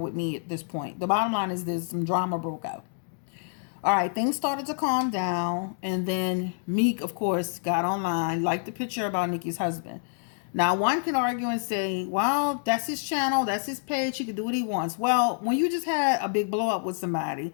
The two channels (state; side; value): silent; right; digital silence